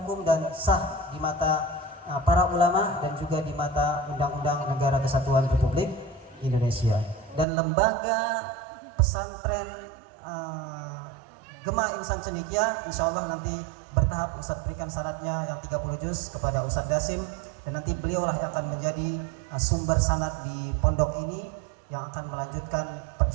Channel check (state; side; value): drops out; left; at 7.5 s